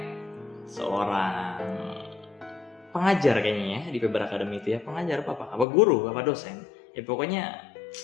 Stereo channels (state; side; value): drops out; right; at 5.7 s